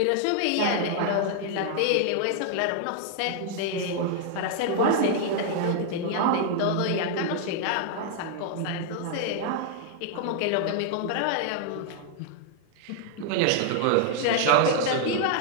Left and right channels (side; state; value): both; different; correlation 0.00